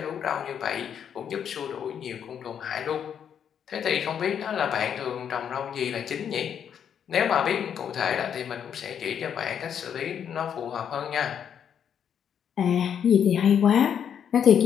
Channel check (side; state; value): right; quieter; 8.4 dB